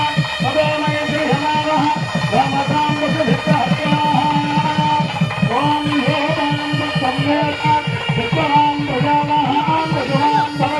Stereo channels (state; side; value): identical; both; correlation 1.00